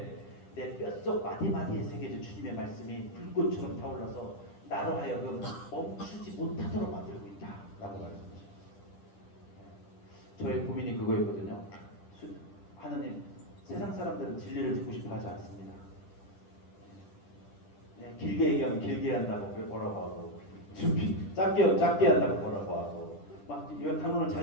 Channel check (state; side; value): late; right; 10 ms